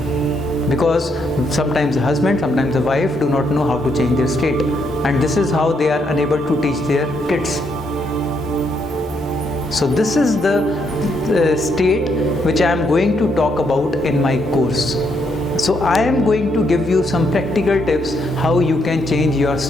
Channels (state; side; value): normal; both; correlation 0.76